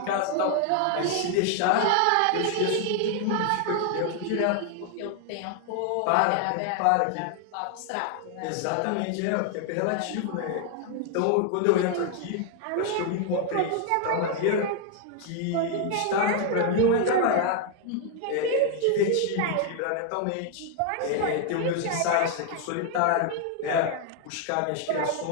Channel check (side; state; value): both; different; correlation 0.00